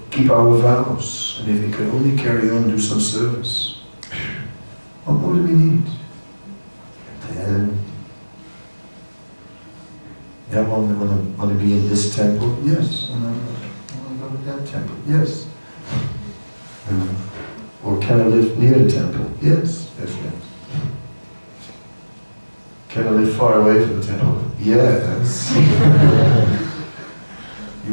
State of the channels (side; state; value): both; inverted; correlation -1.00